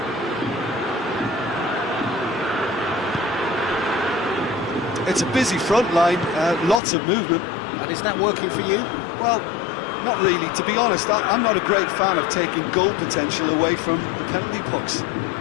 It's a busy front line, lots of movement. And is that working for you? Well, not really. To be honest, I'm not a great fan of taking goal potential away from the penalty box.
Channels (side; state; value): right; drops out; at 6.8 s